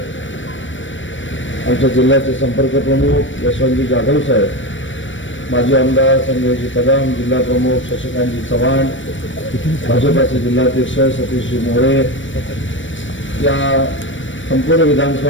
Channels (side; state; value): right; late; 0.56 ms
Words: आमच्या जिल्ह्याचे संपर्क प्रमुख यशवंतजी जाधव साहेब, माजी आमदार संजयजी कदम, जिल्हा प्रमुख शशिकांतजी चव्हाण, भाजपाचे जिल्हाध्यक्ष सतीशजी मोरे, या संपूर्ण